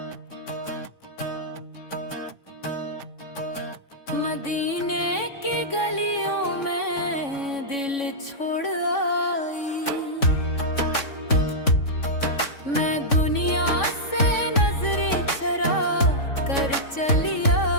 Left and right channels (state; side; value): late; right; 3.6 ms